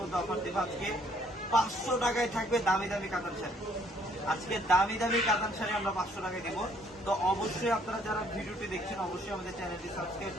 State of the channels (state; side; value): normal; both; correlation 0.64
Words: মধ্যে অফার দেবো। আজকে 500 টাকায় থাকবে দামি দামি কাতান শাড়ি। আজকে দামি দামি কাতান শাড়ি আমরা 500 টাকায় দেবো। তো অবশ্যই আপনারা যারা ভিডিওটি দেখছেন অবশ্যই আমাদের চ্যানেলটি সাবস্ক্রাইব